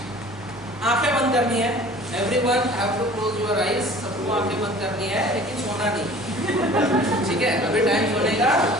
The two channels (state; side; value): normal; both; correlation 0.46